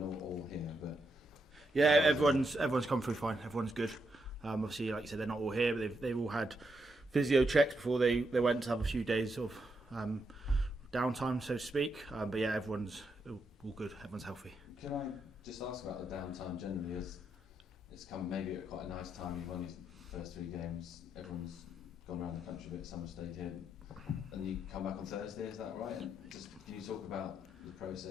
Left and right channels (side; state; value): both; normal; correlation 0.81